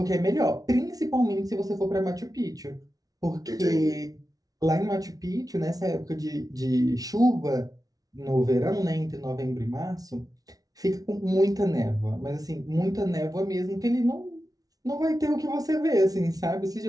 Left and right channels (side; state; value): left; late; 0.18 ms